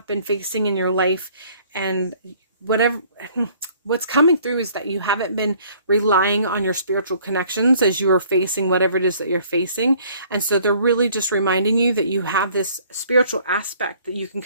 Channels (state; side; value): inverted; both; correlation -0.58